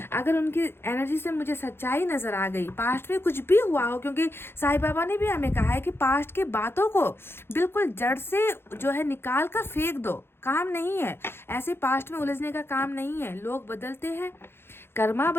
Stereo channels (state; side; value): late; right; 0.11 ms